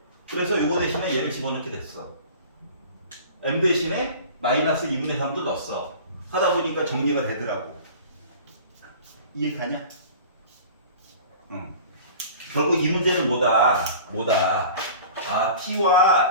그래서 요거 대신에 얘를 집어넣게 됐어. m 대신에 마이너스 2분의 3도 넣었어. 하다 보니까 정리가 되더라고. 이해가냐? 응. 결국 이 문제는 뭐다? 아, t와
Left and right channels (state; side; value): inverted; both; correlation -0.41